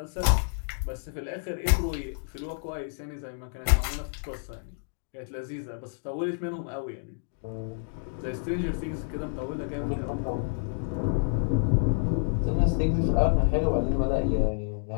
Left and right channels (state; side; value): silent; right; digital silence